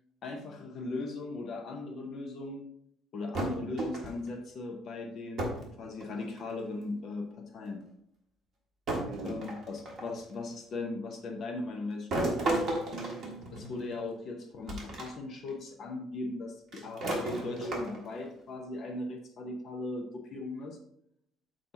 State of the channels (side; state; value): both; normal; correlation 0.65